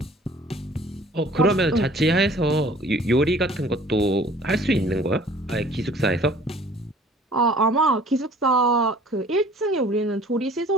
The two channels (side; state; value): both; normal; correlation 0.52